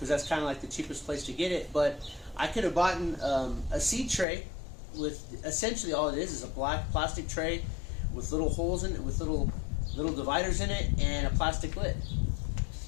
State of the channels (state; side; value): drops out; right; at 4.2 s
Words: that's kind of like the cheapest place to get it. But I could have bought a seed tray with essentially all it is a black plastic tray with little holes in it, with little dividers in it, and a plastic lid